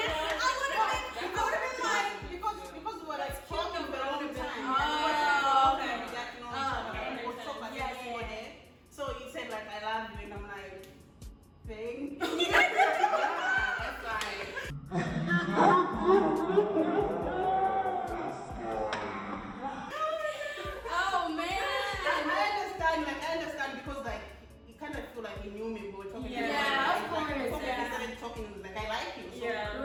I would have been like, because we were like talking for a long time. Oh, okay. We got to know each other. We was talking like before that. So he said like I love you, and I'm like, thank you. That's like. oh man. I understand because like he kind of feel like he knew me, but we were talking. Yeah, of Like, course, before yeah. we started talking, like I like you. So Yeah.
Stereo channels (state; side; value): identical; both; correlation 1.00